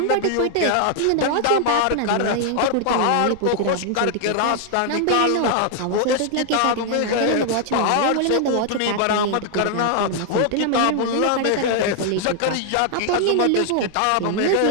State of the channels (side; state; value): both; different; correlation 0.00